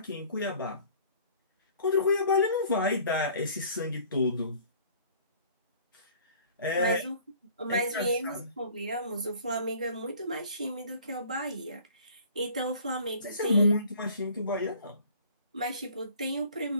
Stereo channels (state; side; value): inverted; both; correlation -0.51